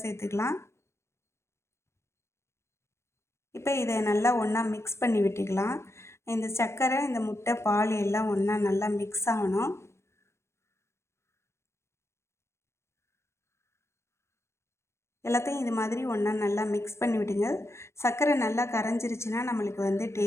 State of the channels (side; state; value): right; late; 0.13 ms